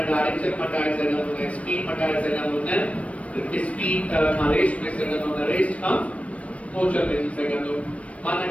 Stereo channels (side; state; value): right; late; 0.064 ms